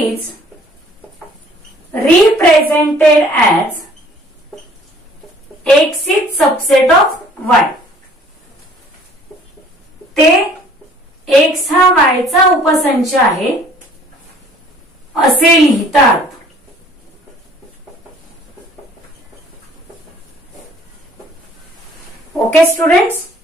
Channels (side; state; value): both; normal; correlation 0.55